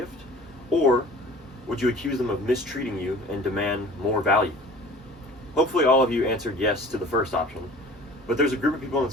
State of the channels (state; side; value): normal; both; correlation 0.45